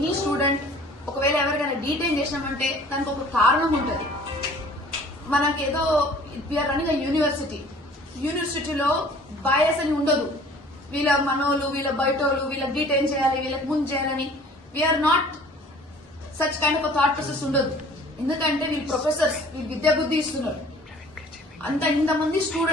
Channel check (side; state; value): both; normal; correlation 0.50